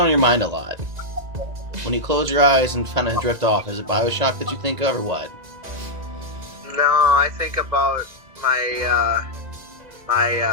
your mind a lot? When you close your eyes and kind of drift off, is it BioShock that you think of, or what? No, I think about my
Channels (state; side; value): late; left; 2.0 ms